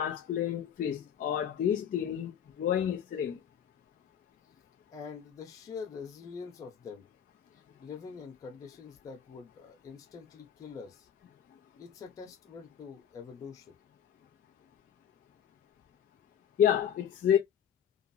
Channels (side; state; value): right; quieter; 9.0 dB